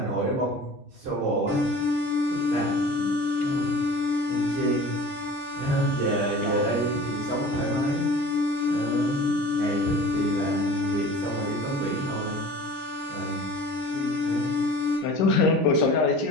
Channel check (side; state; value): both; normal; correlation 0.41